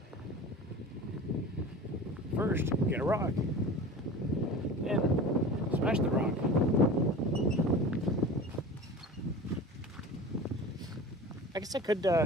First, get a rock. Then, smash the rock. I guess I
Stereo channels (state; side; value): normal; both; correlation 0.35